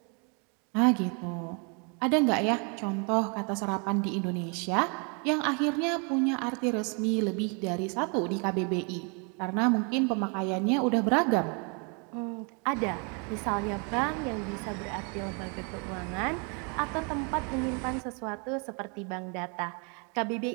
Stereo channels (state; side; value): quieter; left; 35.6 dB